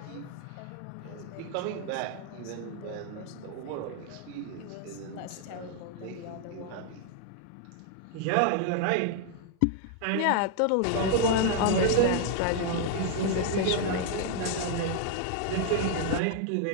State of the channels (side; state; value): both; different; correlation 0.00